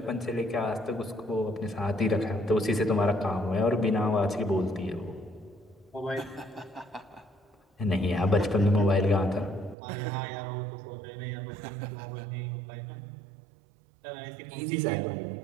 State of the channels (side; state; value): left; drops out; at 9.8 s